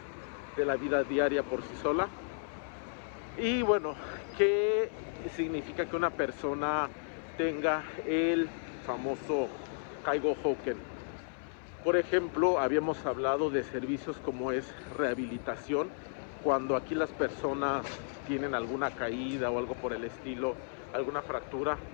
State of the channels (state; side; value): silent; right; 55 dB below the other